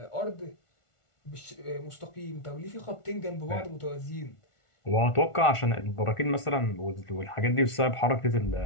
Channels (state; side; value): late; right; 1.4 ms